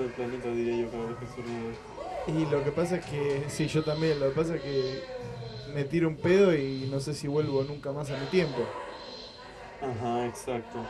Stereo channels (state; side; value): identical; both; correlation 1.00